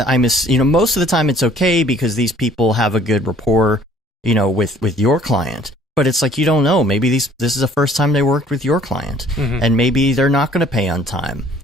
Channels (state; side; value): normal; both; correlation 0.56